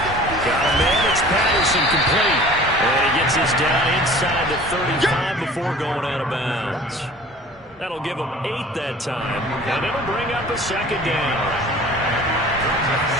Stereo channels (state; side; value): normal; both; correlation 0.45